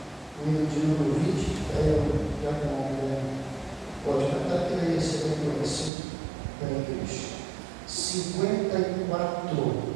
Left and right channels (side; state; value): left; drops out; at 5.9 s